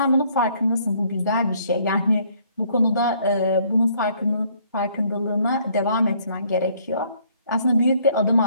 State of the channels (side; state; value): both; inverted; correlation -0.64